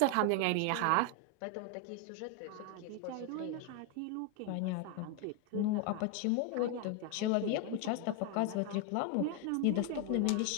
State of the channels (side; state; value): both; different; correlation 0.01